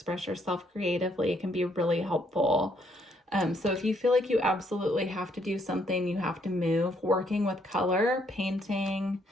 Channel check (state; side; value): normal; both; correlation 0.70